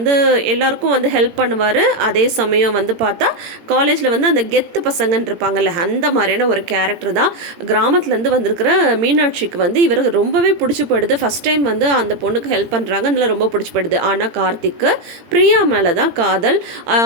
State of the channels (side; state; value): left; late; 17 ms